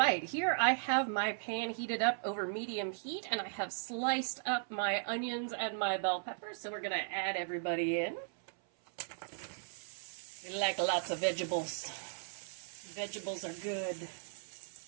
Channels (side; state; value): left; silent; 53 dB below the other